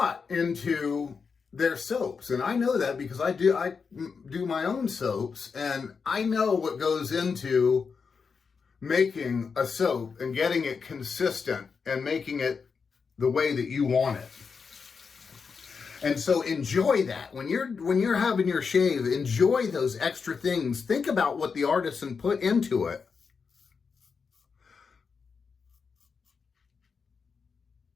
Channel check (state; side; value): quieter; right; 5.5 dB